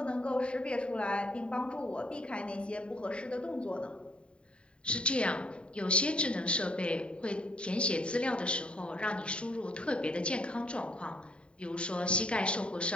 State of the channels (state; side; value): late; right; 0.055 ms